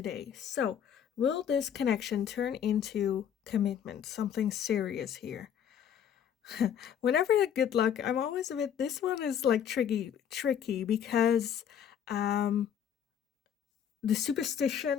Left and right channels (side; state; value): right; quieter; 8.9 dB